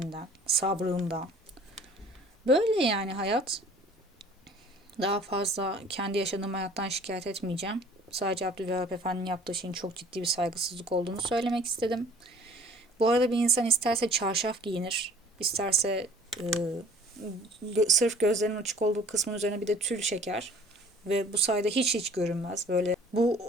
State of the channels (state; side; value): normal; both; correlation 0.51